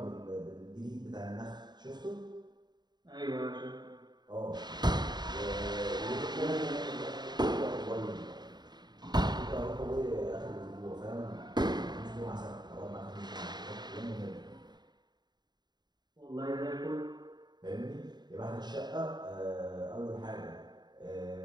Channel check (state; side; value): late; left; 0.20 ms